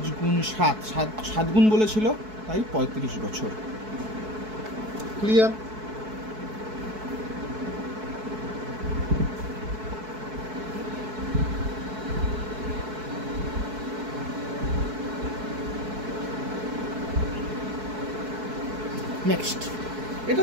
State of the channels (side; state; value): left; late; 4.6 ms